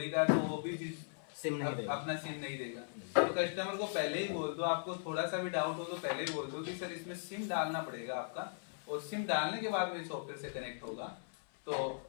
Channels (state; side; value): silent; right; 52 dB below the other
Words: का, तो वो भी सिम नहीं देगा, अपना सिम नहीं देगा। तो कस्टमर को पहले ही बोल दो, आपको थोड़ा सा भी डाउट हो तो पहले ही बोल दो कि सर इसमें सिम डालना पड़ेगा आपका, और सिम डालने के बाद में सॉफ्टवेयर से कनेक्ट होगा। तो